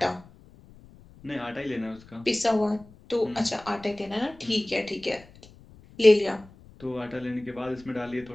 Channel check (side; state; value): left; noise; rumble, 23 dB below the sound